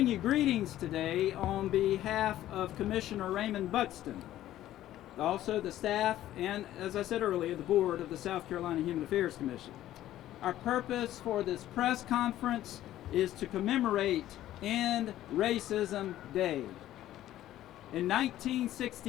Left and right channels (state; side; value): quieter; right; 13.4 dB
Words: you greetings today on behalf of Commissioner Raymond Buxton, also the staff, and as I said earlier, the board of the South Carolina Human Affairs Commission. Our purpose for this press conference is to commemorate End Racism Day. In